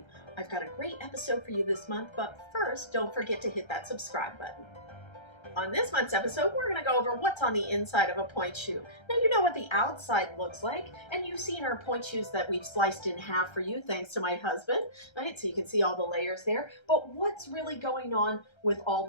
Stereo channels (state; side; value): late; right; 1.3 ms